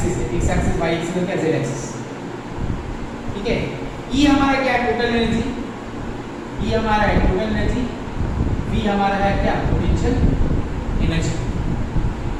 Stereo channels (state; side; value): identical; both; correlation 1.00